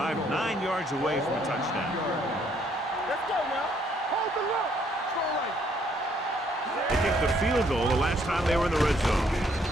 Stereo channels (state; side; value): normal; both; correlation 0.67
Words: 9 yards away from a touchdown. Let's go now. Hold the look. Strong right. They kicked the field goal the last time they were in the red zone.